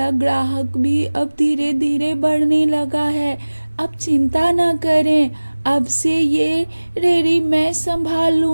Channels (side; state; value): both; inverted; correlation -1.00